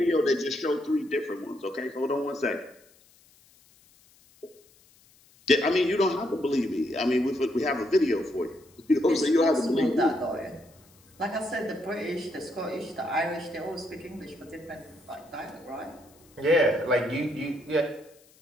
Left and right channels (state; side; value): noise; left; hiss, 29 dB below the sound